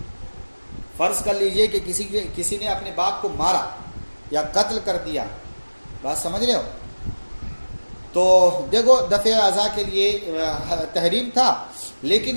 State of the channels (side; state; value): both; inverted; correlation -1.00